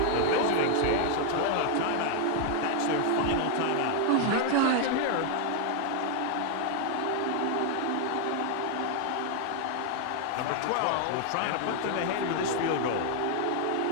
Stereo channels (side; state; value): both; different; correlation 0.00